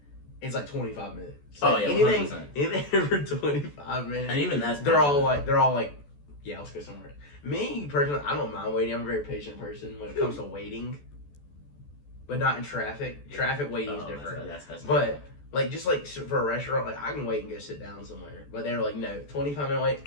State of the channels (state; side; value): late; right; 14 ms